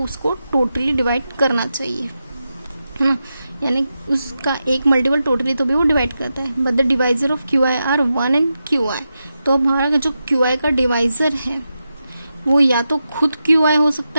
उसको टोटली डिवाइड करना चाहिए, है ना। यानी उसका एक मल्टीपल टोटली तो भी वो डिवाइड करता है। But the divisor of QI are 1 and QI, तो हमारा जो QI का डिवाइजर है वो या तो खुद QI हो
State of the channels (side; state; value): both; inverted; correlation -0.89